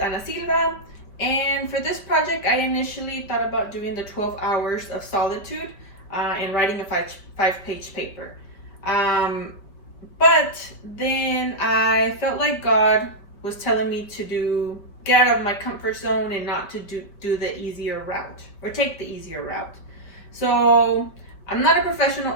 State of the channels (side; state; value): right; late; 4.9 ms